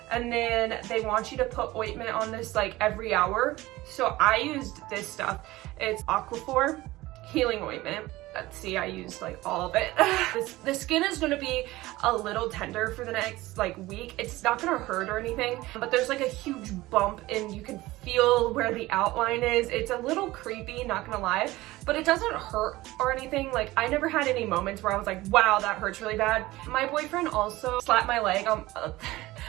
and then they want you to put ointment on this like every hour. So I used this stuff. It's Aquaphor healing ointment. Let's see, I used like all of it. The skin is gonna be a little tender for the next like week. It's not gonna hurt or anything, but there's like a huge bump and you can feel where the outline is. It's a little creepy, not gonna lie, but it doesn't hurt or anything. Like, I never had any moments where I was like, wow, that hurts really bad. My boyfriend also slapped my leg.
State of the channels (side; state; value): left; quieter; 18.5 dB